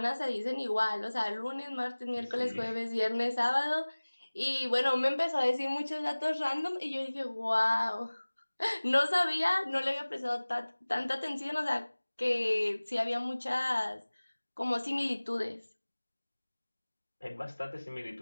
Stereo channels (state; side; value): inverted; both; correlation -1.00